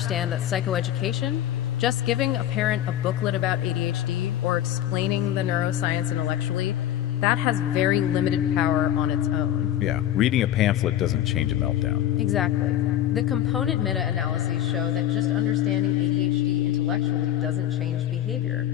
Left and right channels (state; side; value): quieter; right; 11.8 dB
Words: that psychoeducation, just giving a parent a booklet about ADHD or explaining the neuroscience intellectually, that has very limited power on its own. Yeah, reading a pamphlet doesn't change a meltdown. Exactly. The component meta-analyses show that just understanding ADHD intellectually doesn't change behavior.